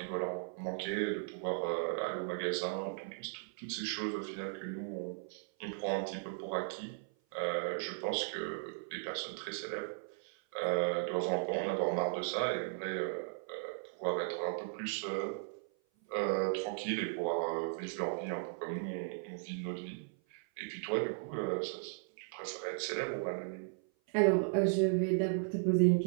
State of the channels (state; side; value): silent; left; 53 dB below the other